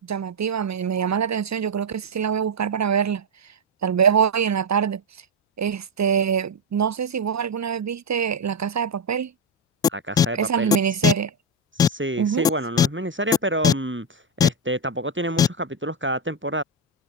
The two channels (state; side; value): normal; both; correlation 0.03